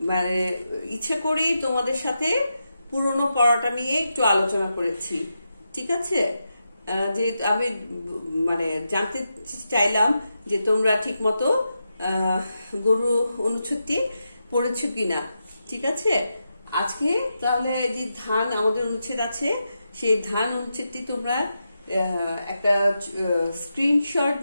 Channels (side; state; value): both; inverted; correlation -0.87